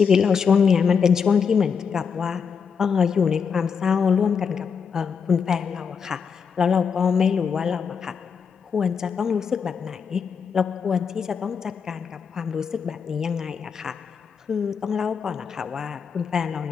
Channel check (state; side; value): quieter; right; 6.3 dB